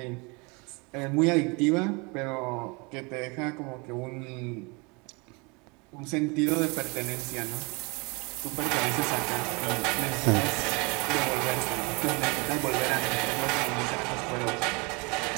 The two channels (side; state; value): left; quieter; 29.1 dB